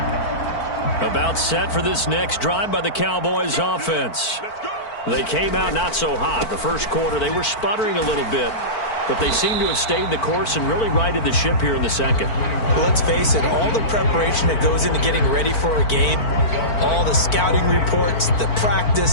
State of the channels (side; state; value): right; late; 4.5 ms